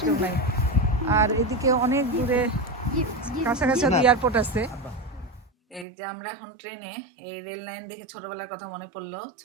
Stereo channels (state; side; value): drops out; left; at 5.9 s